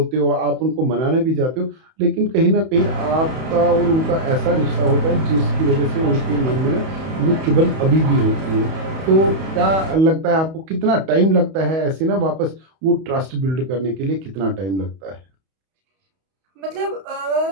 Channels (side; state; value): left; late; 31 ms